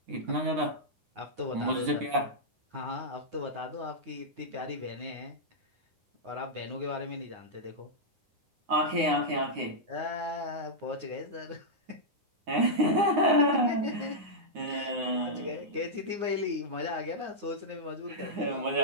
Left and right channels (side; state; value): left; late; 9.6 ms